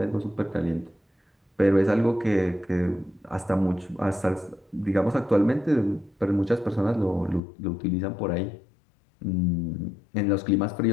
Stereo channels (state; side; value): drops out; right; at 7.4 s